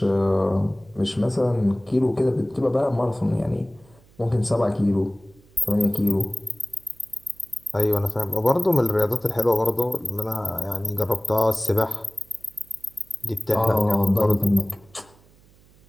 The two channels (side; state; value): right; noise; hum, 29 dB below the sound